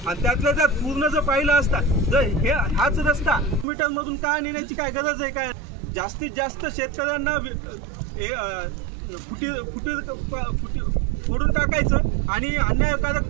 आणि त्यातल्या त्यात पूर्ण जर पाहिलं असता जर हाच रस्ता मीटरमधून का नेण्याची काय गरज आहे काय? जास्तीत जास्त शेतकऱ्यांना फोडून टाकायचं आणि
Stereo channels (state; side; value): drops out; left; at 3.7 s